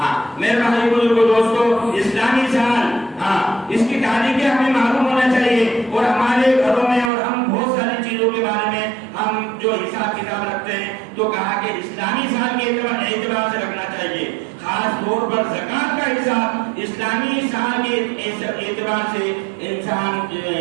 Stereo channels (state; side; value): drops out; left; at 7.1 s